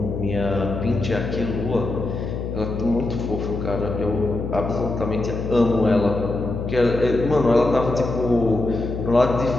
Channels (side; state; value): left; noise; hum, 5 dB below the sound